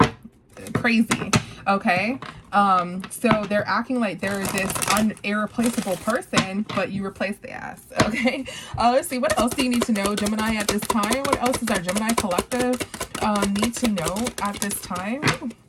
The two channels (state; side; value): identical; both; correlation 1.00